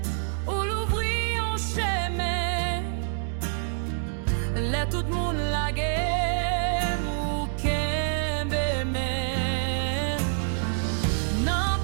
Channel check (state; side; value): silent; left; digital silence